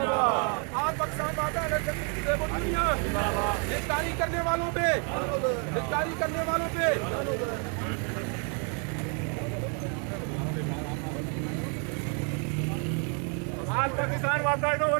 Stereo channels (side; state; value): left; quieter; 38.9 dB